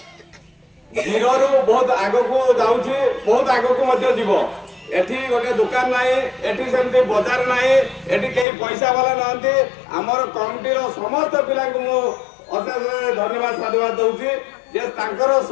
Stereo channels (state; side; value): drops out; right; at 8.5 s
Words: जीरो बहुत आग को जाऊँगी बहुत आग को जीव एठी गोटे दुकान ना एठी सेमती बजार ना एठी कई पैसा वाला नहंती आमर कमिटी समस्त पिला को अशेष धन्यवाद साधुवाद दूसरी जे तांकर